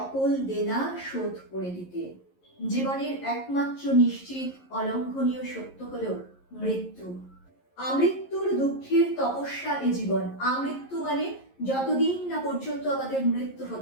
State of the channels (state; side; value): late; right; 11 ms